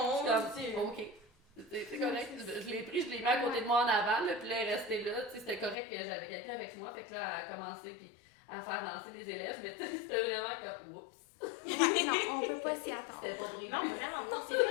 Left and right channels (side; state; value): right; drops out; at 5.8 s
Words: suis comme Dieu. « Ok, c'est correct. » Je l'ai pris, je l'ai mis à côté de moi en avant, là, puis là, elle est restée là. Tu sais, c'était correct que j'avais quelqu'un avec moi, fait que là, elle a commencé puis à faire danser les élèves, mais tu sais, c'était vraiment comme « Oups! » Non, on peut pas s'y attendre. C'était pas prévu. Non, vraiment, non, c'est